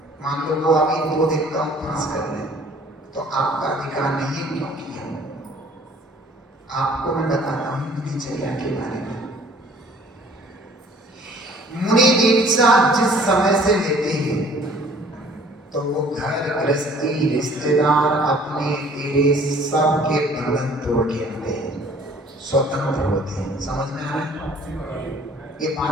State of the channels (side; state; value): both; normal; correlation 0.54